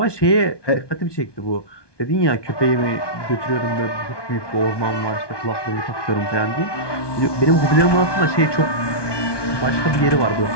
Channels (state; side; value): late; right; 1.2 ms